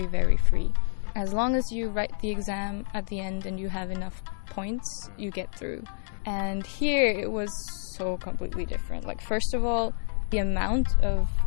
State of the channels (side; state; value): right; silent; 59 dB below the other